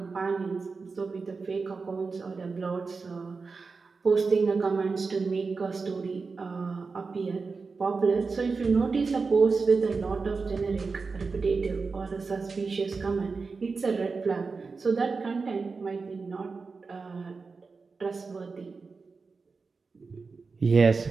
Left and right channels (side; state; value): left; quieter; 4.5 dB